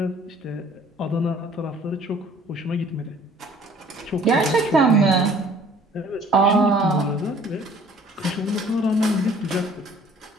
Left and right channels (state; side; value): normal; both; correlation 0.54